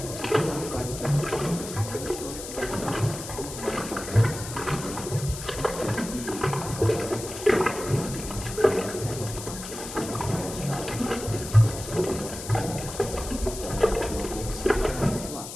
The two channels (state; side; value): noise; left; hiss, 10 dB below the sound